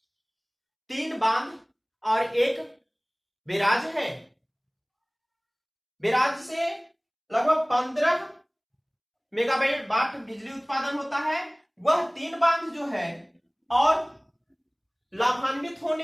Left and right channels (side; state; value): both; identical; correlation 1.00